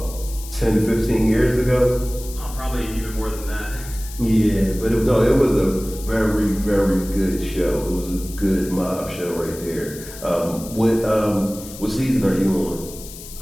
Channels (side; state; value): left; noise; hiss, 15 dB below the sound